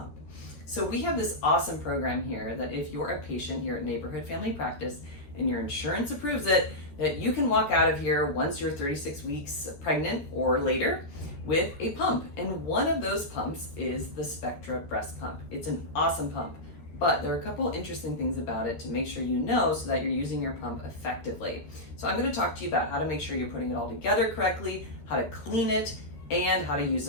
So we have this awesome program here that if you're a patient here at Neighborhood Family Practice and your insurance approves it, that you can walk out of here once you're 36 weeks pregnant or later with a pump. And one of those pumps is the Spectra breast pump. It's an awesome pump. But there are a couple interesting things about it to make sure you know so that you're using your pump effectively. So I'm going to talk to you about how to make sure you're putting it all together correctly, how to clean it, and how to use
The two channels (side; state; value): right; late; 13 ms